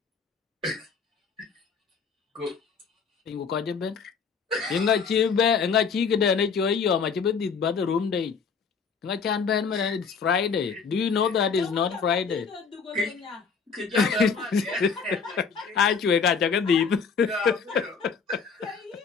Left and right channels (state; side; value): quieter; right; 5.8 dB